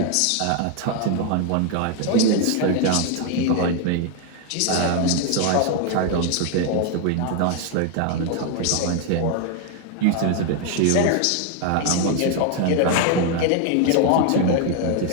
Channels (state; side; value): different; both; correlation 0.01